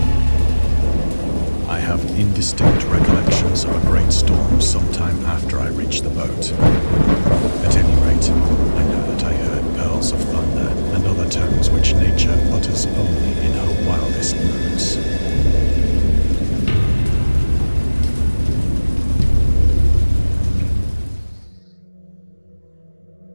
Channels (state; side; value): inverted; both; correlation -1.00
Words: I have indistinct recollections of a great storm sometime after I reached the boat. At any rate, I know that I heard pearls of thunder and other tones which nature utters only in her wildest moods.